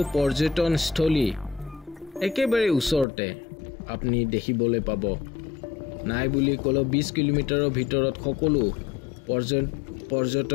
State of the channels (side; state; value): right; drops out; at 3.1 s